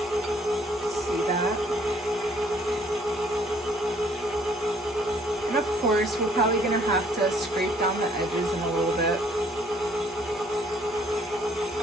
And of course, we're probably gonna have to scrape down the edges in a little bit.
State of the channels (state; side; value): normal; both; correlation 0.62